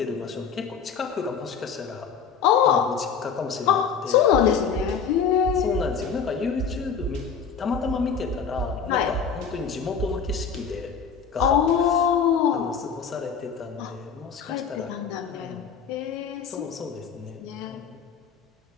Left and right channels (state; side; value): quieter; right; 6.6 dB